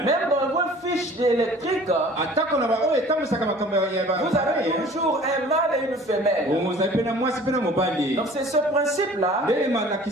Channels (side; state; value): both; normal; correlation 0.48